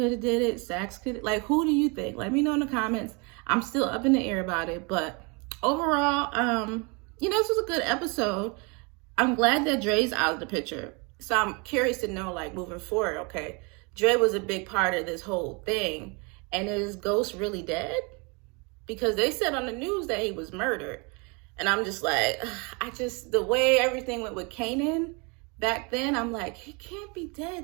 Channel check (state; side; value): quieter; left; 30.9 dB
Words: have did it? Sax could? Like, who do you think? Let me know in the comments. I'm still up in the air about it, but overall, you know, this was a good episode. I'm glad that Dre's out of the picture. So I'm curious to know, like, moving forward, okay, Dre was a big part of this whole thing. And is Ghost really dead? Because they said on the news that he was murdered. And I'm just like, the way everything went with Kanan back then, I'm like, he can't be dead